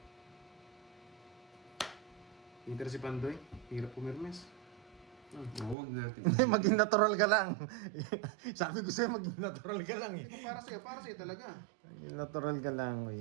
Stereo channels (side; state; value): left; drops out; at 5.8 s